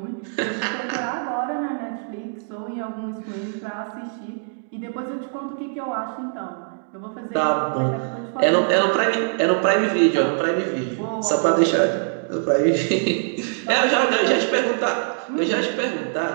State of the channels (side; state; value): left; silent; digital silence